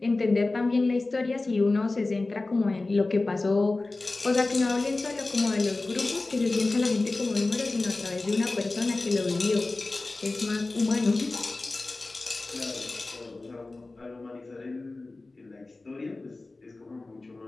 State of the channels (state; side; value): quieter; right; 3.2 dB